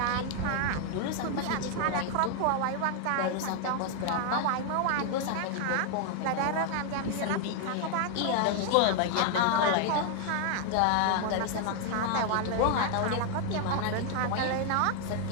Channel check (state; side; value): different; both; correlation 0.00